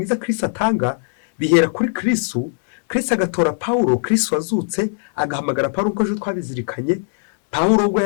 Kristo atanga, bihera kuri Kristo. Kristo agatora Pawulo, Kristo wazutse agahamagara Pawulo, uko ejo twabizirikanye. Pawulo ubwo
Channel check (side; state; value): right; silent; 64 dB below the other